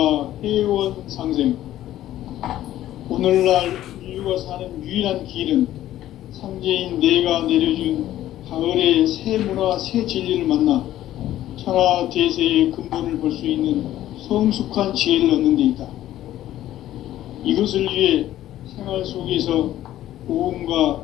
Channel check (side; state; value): right; quieter; 13.3 dB